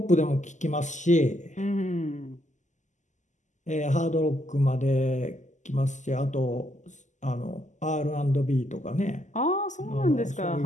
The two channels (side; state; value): right; late; 0.35 ms